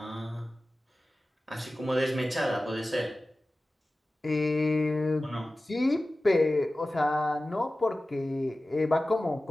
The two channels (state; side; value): normal; both; correlation 0.96